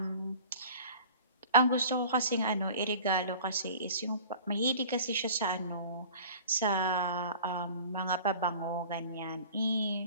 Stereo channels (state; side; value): inverted; both; correlation -0.44